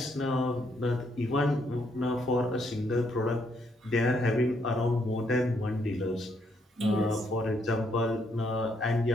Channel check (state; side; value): normal; both; correlation 0.73